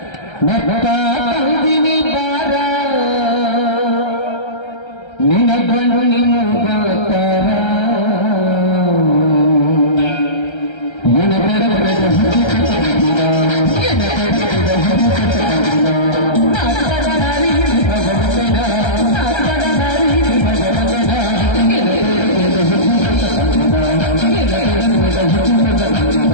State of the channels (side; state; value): right; late; 1.3 ms